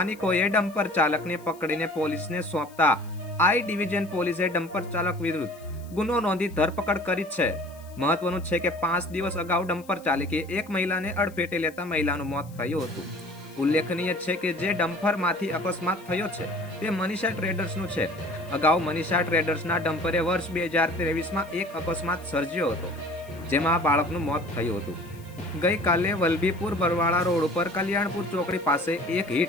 ડમ્પર ચાલકને પકડીને પોલીસને સોંપતા આઈ ડિવિઝન પોલીસે ડમ્પર ચાલક વિરુદ્ધ ગુનો નોંધી ધરપકડ કરી છે. મહત્વનું છે કે 5 દિવસ અગાઉ ડમ્પર ચાલકે એક મહિલાને અડફેટે લેતા મહિલાનું મોત થયું હતું. ઉલ્લેખનીય છે કે જે ડમ્પરમાંથી અકસ્માત થયો છે તે મનીષા ટ્રેડર્સનું છે. અગાઉ મનીષા ટ્રેડર્સના ડમ્પરે વર્ષ 2023માં એક અકસ્માત સર્જ્યો હતો, જેમાં બાળકનું મોત થયું હતું. ગઈકાલે વલભીપુર બરવાળા રોડ ઉપર કલ્યાણપુર ચોકડી પાસે એક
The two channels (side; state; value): left; noise; hiss, 25 dB below the sound